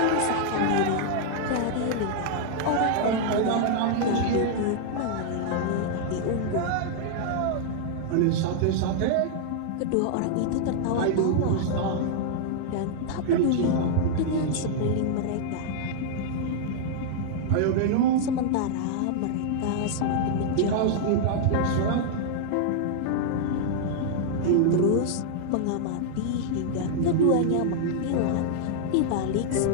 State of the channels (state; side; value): different; both; correlation -0.01